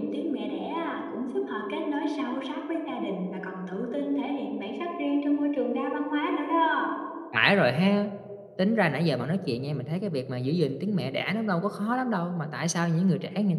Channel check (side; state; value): both; identical; correlation 1.00